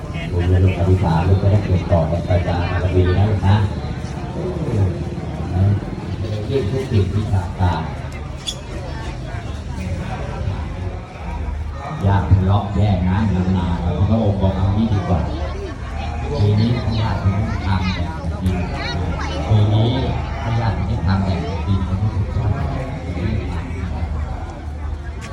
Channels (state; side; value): identical; both; correlation 1.00